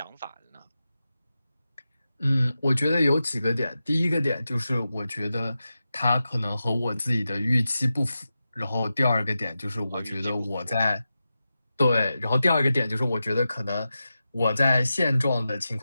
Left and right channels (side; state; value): both; inverted; correlation -0.91